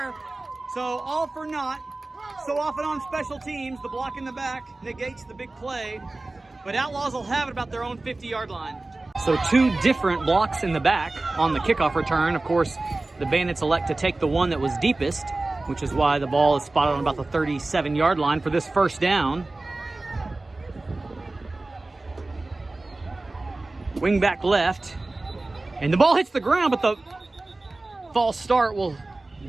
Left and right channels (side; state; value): left; quieter; 3.1 dB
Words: So all for naught. So often on special teams, the block in the back negates the big play. But Outlaws will have it about their own 50-yard line. So 2 different blocks in the back on the kickoff return. Of course, the Bandits elect to take the one that was deepest, which is why the ball is spotted on about the 37-yard line for this first down. Wing back left, and the ball hits the ground, but the false start will